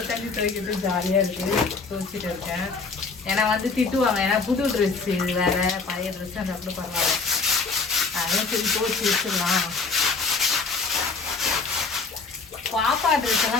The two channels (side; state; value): right; quieter; 4.3 dB